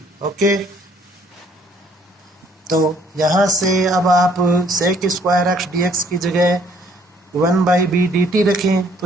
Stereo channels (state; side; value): normal; both; correlation 0.62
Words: Okay, तो यहाँ से अब आप sec square x d x की जगह 1/b dt रखें